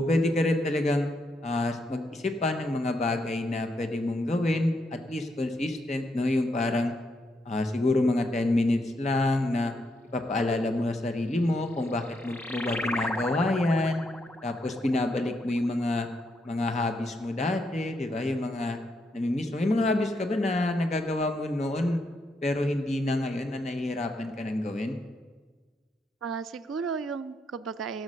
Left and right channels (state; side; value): normal; both; correlation 0.79